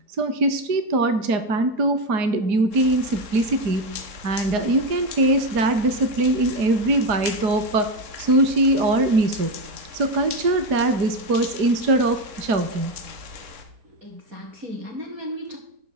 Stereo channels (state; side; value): late; left; 4.8 ms